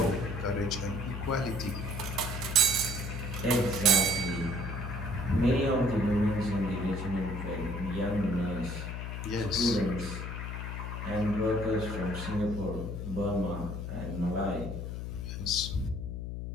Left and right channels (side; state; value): left; noise; hum, 5 dB below the sound